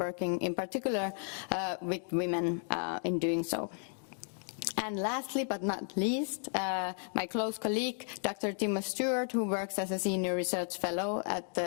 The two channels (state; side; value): silent; right; 55 dB below the other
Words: in particular with women in doing so. And lastly, but not least, my close colleague, Dr. Timo Stewart, who works as a senior research fellow at